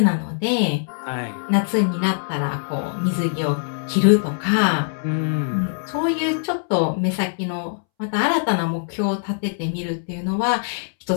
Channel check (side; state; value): right; silent; 64 dB below the other